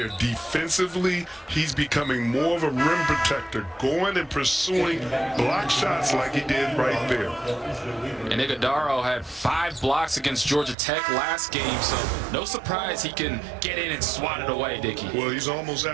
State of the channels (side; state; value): left; drops out; at 10.8 s